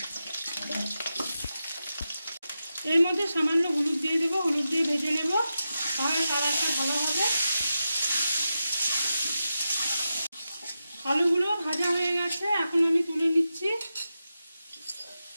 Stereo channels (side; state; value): both; inverted; correlation -0.90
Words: এর মধ্যে সামান্য হলুদ দিয়ে দেবো, হলুদ দিয়ে ভেজে নেব, তাহলে কালারটা ভালো হবে। আলুগুলো ভাজা হয়ে গেছে, এখন আমি তুলে নিচ্ছি।